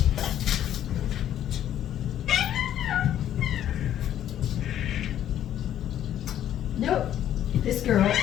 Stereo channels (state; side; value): quieter; right; 11.1 dB